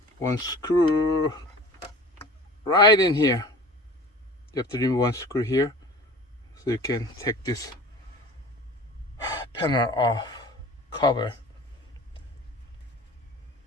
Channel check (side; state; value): both; normal; correlation 0.40